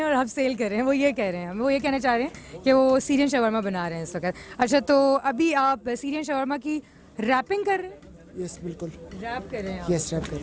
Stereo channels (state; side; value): identical; both; correlation 1.00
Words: और आप सेल कर रहे हैं, वो ये कह रहे हैं, वो ये कहना चाह रहे हैं कि वो सीरियन शवारमा बना रहे हैं इस वक्त। अच्छा, तो अभी आप सीरियन शवारमा की रैपिंग कर रहे हैं? यस बिल्कुल। रैप कर रहे हैं आप? यस रैप कर रहे